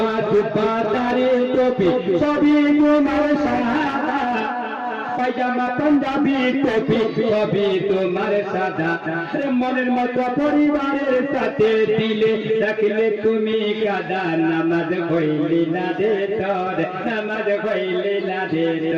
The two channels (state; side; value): identical; both; correlation 1.00